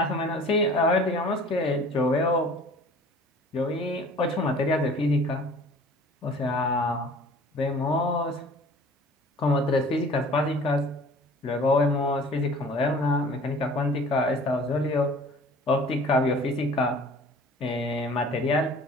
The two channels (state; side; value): normal; both; correlation 0.47